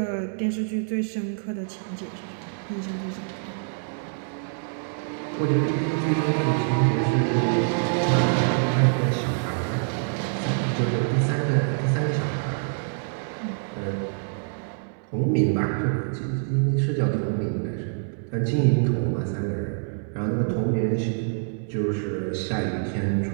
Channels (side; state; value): left; silent; 61 dB below the other